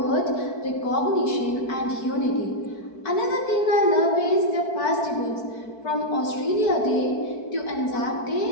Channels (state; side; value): late; right; 4.5 ms